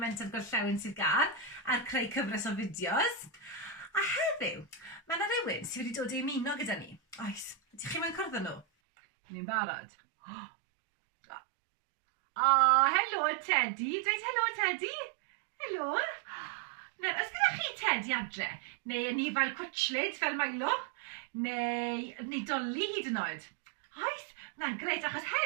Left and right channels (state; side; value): drops out; left; at 8.7 s